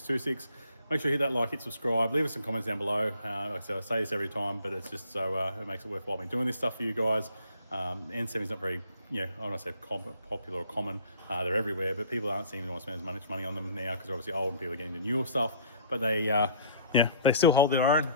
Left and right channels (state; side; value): inverted; both; correlation -0.53